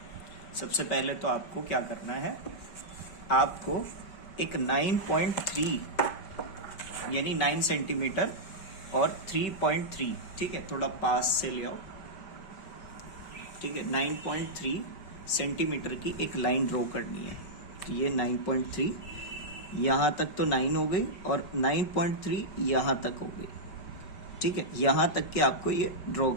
सबसे पहले तो आपको क्या करना है, आपको एक 9.3 यानी 9 सेंटीमीटर और 3.3, ठीक है, थोड़ा पास से ले आओ, ठीक है। 9.3 सेंटीमीटर की एक लाइन ड्रॉ करनी है। तो ये 9.3 यहाँ तक तो 9 हो गई और 9.3 यहाँ तक हो गई, ठीक है। यहाँ तक के आपको ये ड्रॉ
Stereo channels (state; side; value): late; right; 5.1 ms